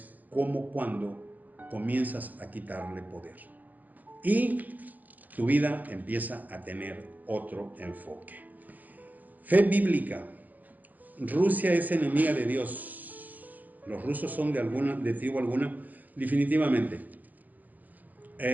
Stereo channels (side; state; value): left; late; 0.082 ms